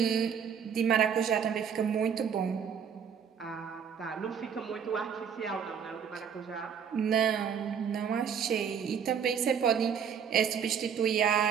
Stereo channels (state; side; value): quieter; left; 7.5 dB